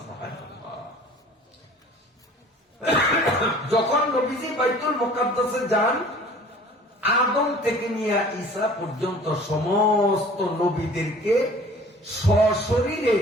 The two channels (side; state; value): both; normal; correlation 0.48